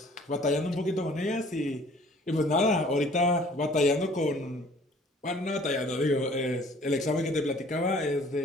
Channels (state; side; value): normal; both; correlation 0.54